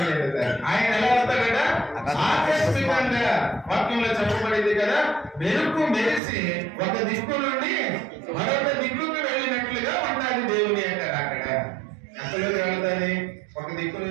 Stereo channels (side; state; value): left; drops out; at 6.2 s